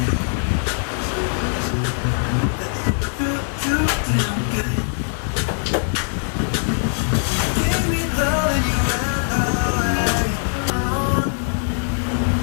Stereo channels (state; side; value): silent; right; 58 dB below the other